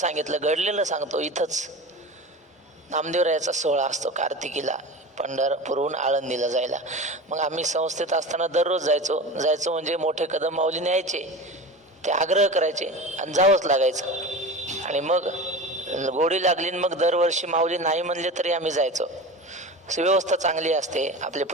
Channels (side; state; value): both; normal; correlation 0.31